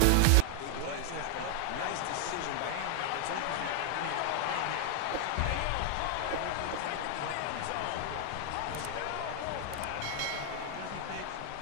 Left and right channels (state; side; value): different; both; correlation 0.00